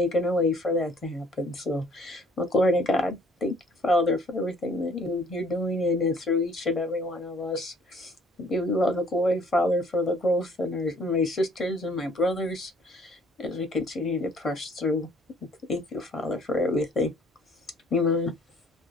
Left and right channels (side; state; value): both; normal; correlation 0.59